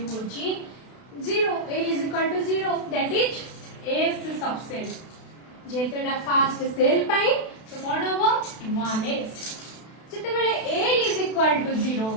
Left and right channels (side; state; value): right; late; 32 ms